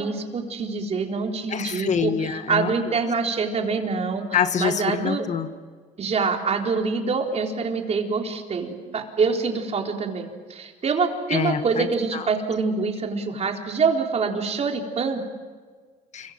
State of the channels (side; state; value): both; normal; correlation 0.35